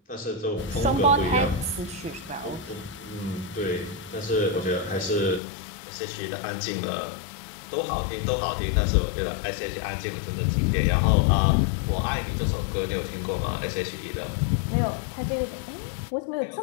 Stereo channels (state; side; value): drops out; right; at 5.4 s